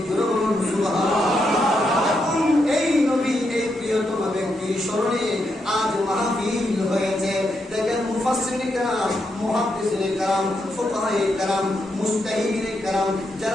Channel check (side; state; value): both; normal; correlation 0.82